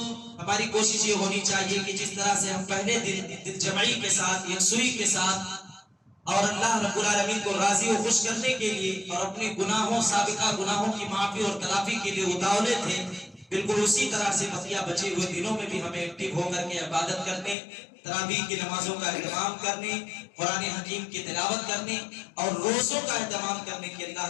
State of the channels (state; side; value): drops out; right; at 17.6 s